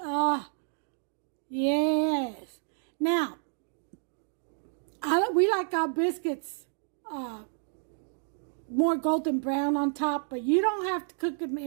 Yes. Now, we like our biscuits more golden brown on top, but you don't have to cook them.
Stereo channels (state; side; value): silent; left; digital silence